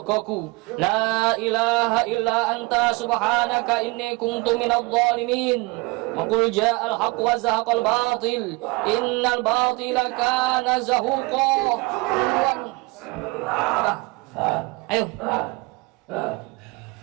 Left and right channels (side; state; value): left; quieter; 25.0 dB